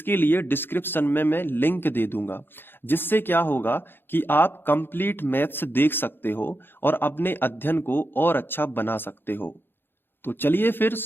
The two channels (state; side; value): late; right; 0.10 ms